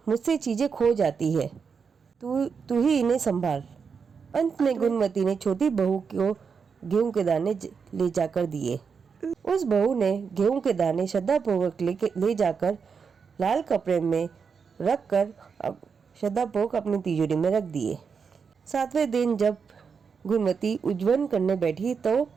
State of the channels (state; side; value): quieter; left; 5.9 dB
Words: मुझसे चीजें खो जाती है, तू ही इन्हें संभाल। अंत में गुणवती ने छोटी बहू को गेहूं के दाने ले जाकर दिए। उस बहू ने गेहूं के दाने श्रद्धापूर्वक ले जाकर लाल कपड़े में रख कर श्रद्धापूर्वक अपनी तिजोरी में रख दिए। 7वें दिन जब गुणवती उज्जवल करने बैठी तो